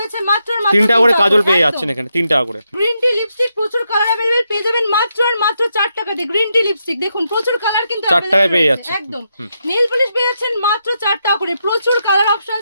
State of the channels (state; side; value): inverted; both; correlation -0.82